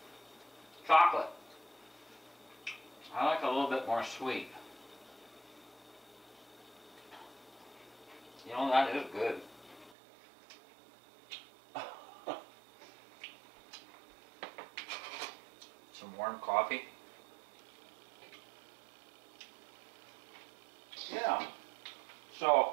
Chocolate. I like a little bit more sweet. You know, that is good. Some warm coffee. Yeah.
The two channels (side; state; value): left; drops out; at 10.0 s